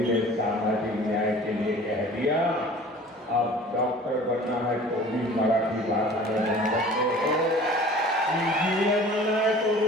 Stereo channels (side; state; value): both; normal; correlation 0.45